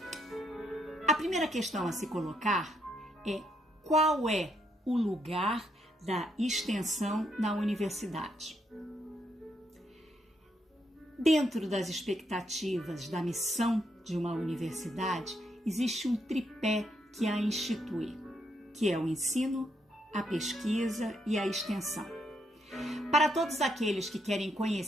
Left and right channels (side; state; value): both; normal; correlation 0.76